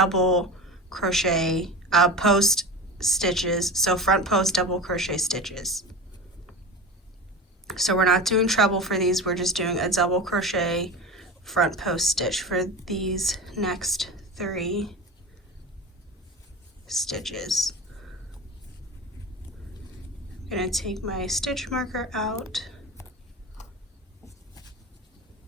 crochet post stitches, so front post double crochet stitches. So we're not doing treble for these, we're just doing a double crochet front post stitch for these next 3 stitches. I'm going to take my stitch marker out.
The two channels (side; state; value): both; normal; correlation 0.29